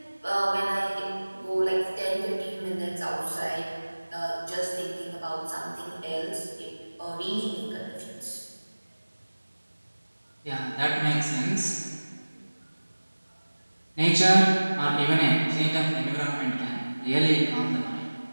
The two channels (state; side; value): inverted; both; correlation -1.00